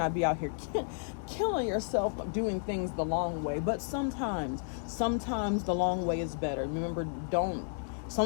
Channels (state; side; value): silent; right; digital silence